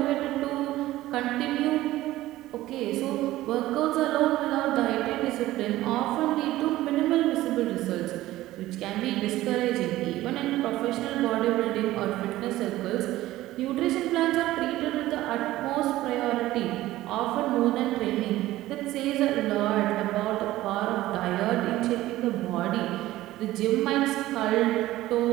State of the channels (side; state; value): left; quieter; 16.0 dB